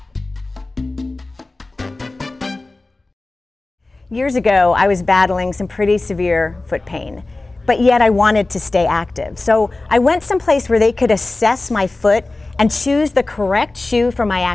Years ago, I was battling some pretty severe foot pain, but yet I wanted to stay active. So I went someplace where they could assess my foot and choose the correct shoe for my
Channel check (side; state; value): right; quieter; 3.1 dB